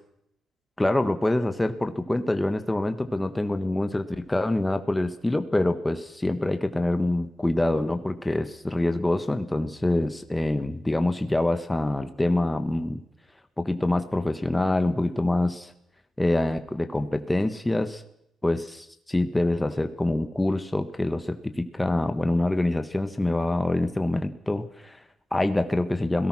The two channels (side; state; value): both; normal; correlation 0.98